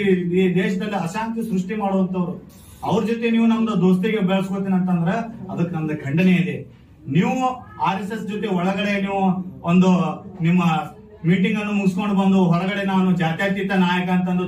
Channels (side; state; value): both; identical; correlation 1.00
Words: ಈ ದೇಶದಲ್ಲಿ ಅಶಾಂತಿ ಸೃಷ್ಟಿ ಮಾಡುವಂತವ್ರು. ಅವ್ರ ಜೊತೆ ನೀವು ನಮ್ದು ದೋಸ್ತಿಗೆ ಬೆಳೆಸ್ಕೋತೀನಿ ಅಂತಂದ್ರ ಅದಕ್ಕೆ ನಮ್ದು ಖಂಡನೆ ಇದೆ. ನೀವು RSS ಜೊತೆ ಒಳಗಡೆ ನೀವು ಒಂದು ನಿಮ್ಮ ಮೀಟಿಂಗ್ ಅನ್ನು ಮುಗಿಸ್ಕೊಂಡು ಬಂದು ಹೊರಗಡೆ ನಾನು ಜಾತ್ಯತೀತ ನಾಯಕ ಅಂತಂದು